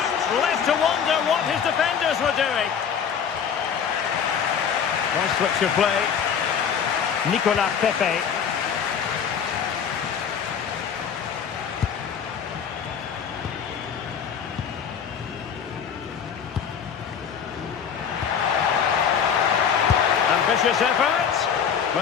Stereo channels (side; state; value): right; quieter; 7.5 dB